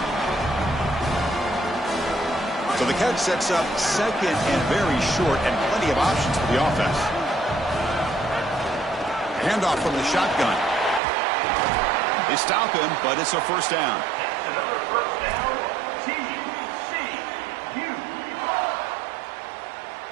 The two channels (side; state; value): left; drops out; at 11.0 s